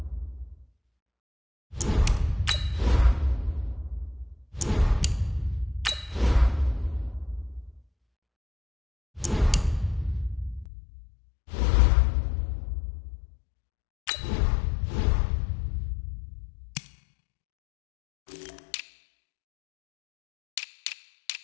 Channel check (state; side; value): drops out; right; at 10.7 s